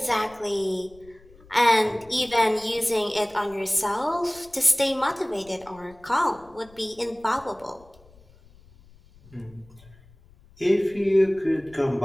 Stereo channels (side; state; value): left; noise; rumble, 26 dB below the sound